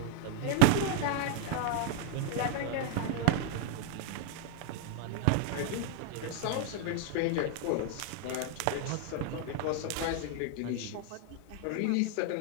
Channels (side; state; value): both; different; correlation 0.00